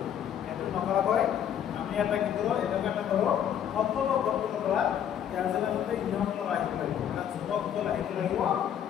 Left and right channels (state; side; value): quieter; right; 9.5 dB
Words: এত নকরা হয় আমি এটা কি করব এটা একটা করব সম্পূর্ণ গঠন করা ইয়ার জন্য মধ্যে নিয়মগুলো রাখতে লাগিব মানে যুবকগুলো রাখতে লাগিব